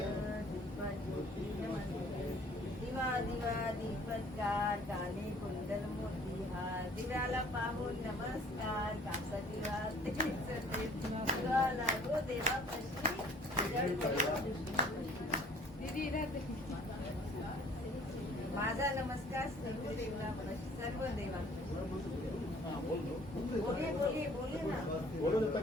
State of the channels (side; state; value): both; normal; correlation 0.54